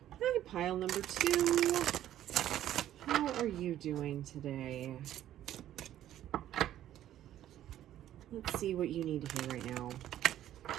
Hi, pile number 2. How are you doing today? Let's see what you need to hear right now.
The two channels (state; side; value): quieter; left; 12.2 dB